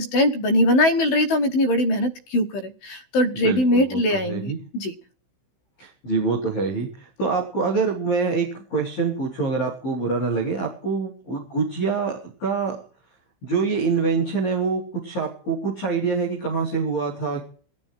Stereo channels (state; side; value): late; right; 15 ms